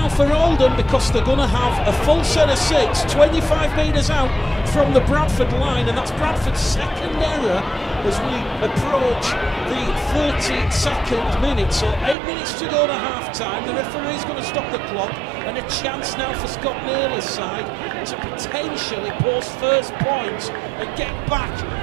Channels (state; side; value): drops out; left; at 12.2 s